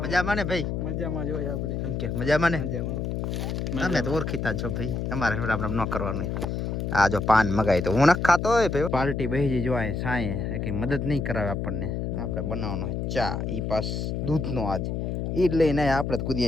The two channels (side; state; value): left; noise; hum, 2 dB below the sound